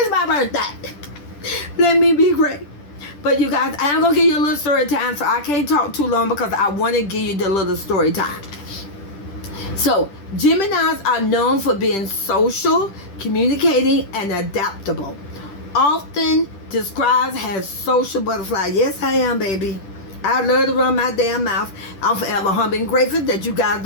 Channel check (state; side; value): late; right; 10 ms